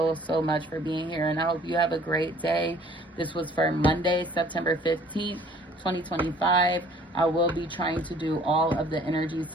much for being here, and I hope you have a great day. This was for Monday, September 15th. 2025. I will be trying to do all of the energy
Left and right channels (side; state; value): both; normal; correlation 0.55